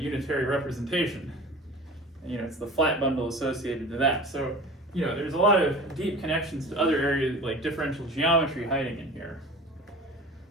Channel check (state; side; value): normal; both; correlation 0.39